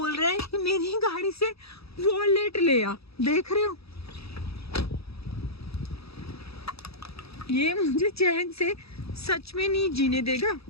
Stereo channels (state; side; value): late; right; 0.77 ms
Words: रहे हैं कि मेरी गाड़ी से वॉलेट ले आ, देख रहे हो। ये मुझे चैन से सच में नहीं जीने देगा।